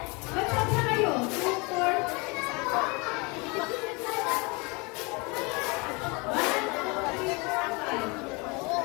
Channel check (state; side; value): quieter; right; 28.3 dB